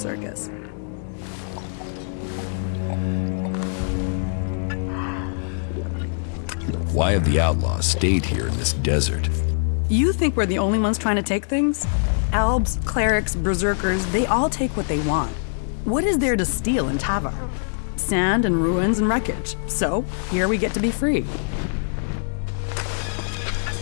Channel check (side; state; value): right; silent; digital silence